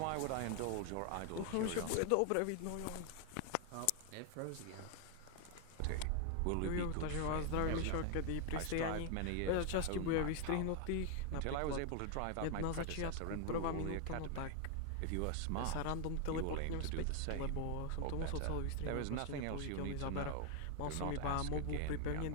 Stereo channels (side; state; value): both; different; correlation 0.00